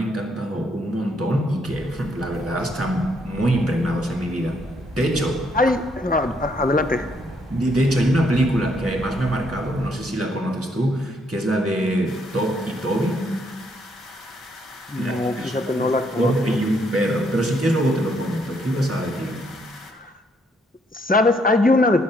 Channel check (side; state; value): both; normal; correlation 0.72